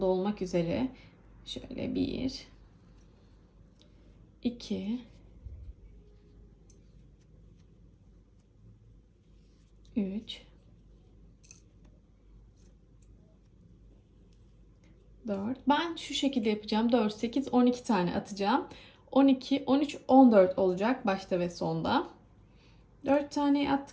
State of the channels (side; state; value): both; identical; correlation 1.00